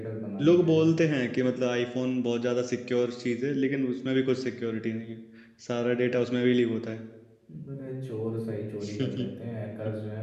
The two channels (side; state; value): both; identical; correlation 1.00